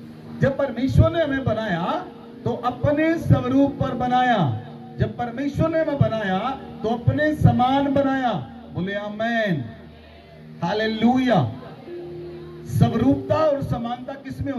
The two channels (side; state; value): both; identical; correlation 1.00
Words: जब परमेश्वर ने हमें बनाया तो अपने स्वरूप पर बनाया। जब परमेश्वर ने हमें बनाया तो अपने समान बनाया। बोले आमेन, हालेलुया। स्वरूपता और समानता किसमें